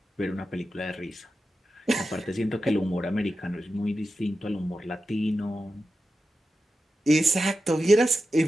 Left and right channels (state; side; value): normal; both; correlation 0.91